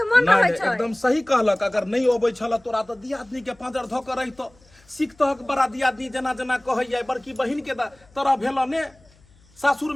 मन रहै छै। एकदम सही कहलक। अगर नहीं अबै छल तोरा तो दियादनी के पाँजर धऽ के रहितो, सीखतहक बड़ा दियादनी जेना जेना कहैया। बड़की बहिन के तरह भेल ने, सासुर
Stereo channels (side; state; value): left; noise; hum, 30 dB below the sound